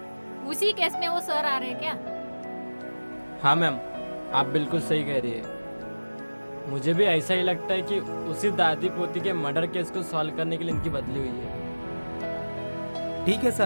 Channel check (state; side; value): inverted; both; correlation -1.00